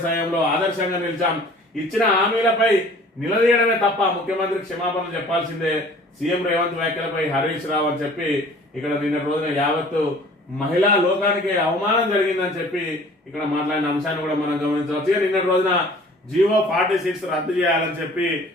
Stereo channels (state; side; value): normal; both; correlation 0.49